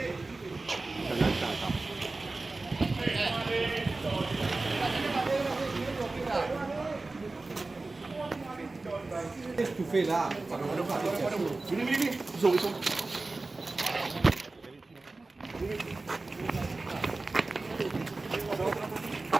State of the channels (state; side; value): quieter; left; 3.4 dB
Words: Tu fais là. Vini. Zoom.